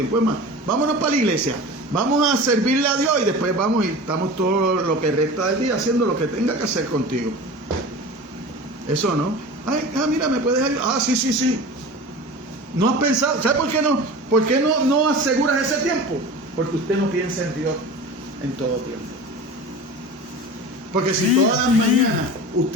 Es más, vámonos para la iglesia, vamos a servirle a Dios y después vamos y estamos todo lo que resta del día haciendo lo que tenga que hacer contigo. Eso no. Mira, ¿me puedes ayudar? Sí. No has pensado, ¿sabe por qué no? ¿Por qué no aseguras ese tiempo? Porque usted no piensa en Dios en todo tiempo. Porque si todas las mañanas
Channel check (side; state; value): both; normal; correlation 0.35